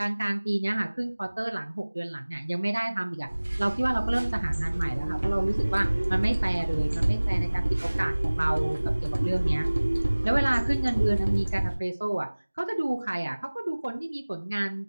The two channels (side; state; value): both; inverted; correlation -1.00